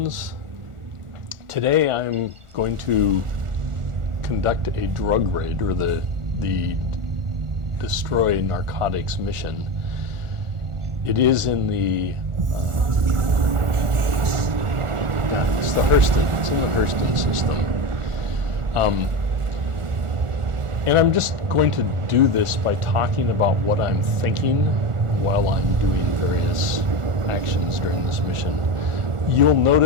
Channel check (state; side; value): late; left; 1.4 ms